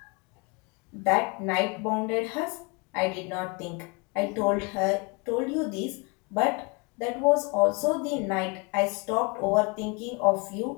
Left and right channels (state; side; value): quieter; right; 30.2 dB